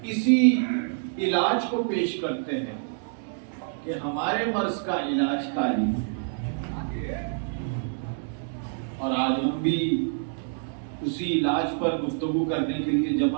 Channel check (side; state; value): left; silent; digital silence